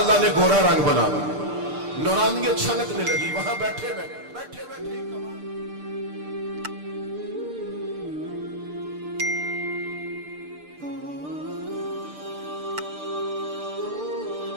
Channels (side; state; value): left; late; 6.7 ms